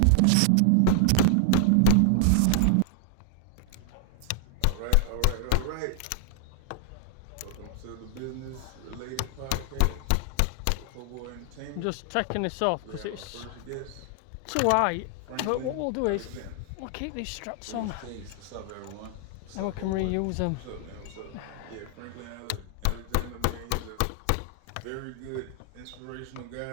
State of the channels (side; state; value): both; different; correlation 0.00